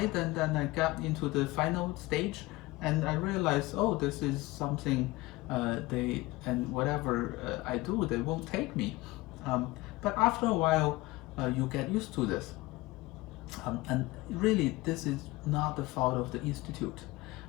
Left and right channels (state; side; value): quieter; right; 20.5 dB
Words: and then I got into the final stage, and I realized, oh, this is something and whatever I do, they won't take me. But after a while, you get used to this. And really, this is not the fault of the institute.